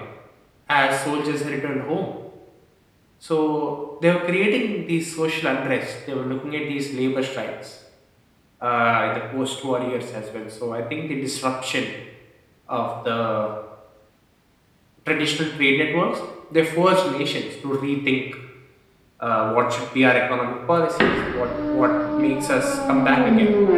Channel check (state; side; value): identical; both; correlation 1.00